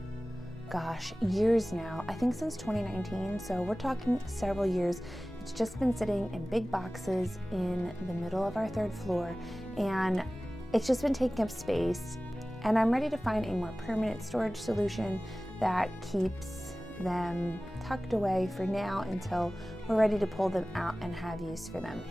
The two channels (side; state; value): both; normal; correlation 0.97